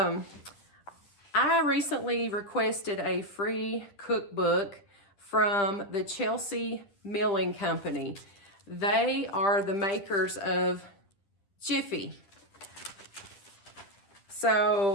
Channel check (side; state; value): right; late; 10 ms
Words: recently requested a free cookbook from the Chelsea Milling Company. They are the makers of Jiffy.